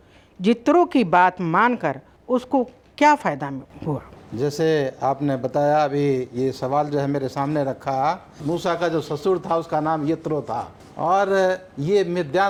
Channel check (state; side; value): identical; both; correlation 1.00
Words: जित्रो की बात मानकर उसको क्या फ़ायदा हुआ? जैसे आपने बताया अभी, ये सवाल जो है मेरे सामने रखा, मूसा का जो ससुर था उसका नाम यत्रो था और ये